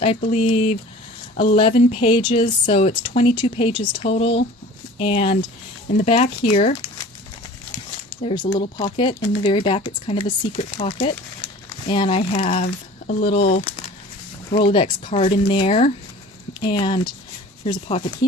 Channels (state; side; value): normal; both; correlation 0.43